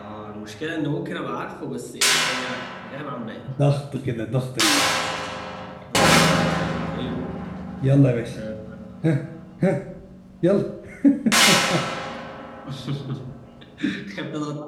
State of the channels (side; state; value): both; identical; correlation 1.00